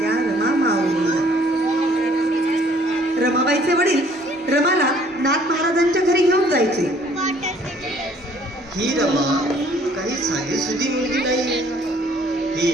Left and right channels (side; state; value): both; normal; correlation 0.59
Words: रमा माऊलीला. रमाबाईचे वडील रमाला नाथ महाराजांच्या घरी घेऊन जायचे. ही रमा काही साधी सुधी मुलगी नाही, ही